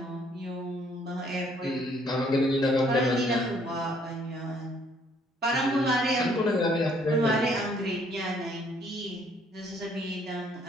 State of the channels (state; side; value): normal; both; correlation 0.64